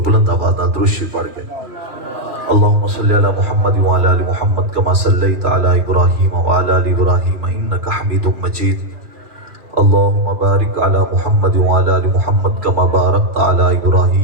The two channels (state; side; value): late; left; 3.0 ms